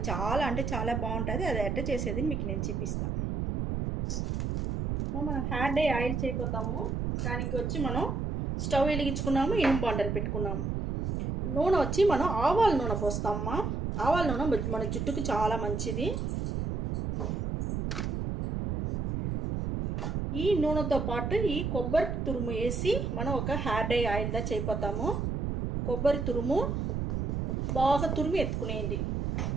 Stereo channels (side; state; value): right; noise; rumble, 1 dB below the sound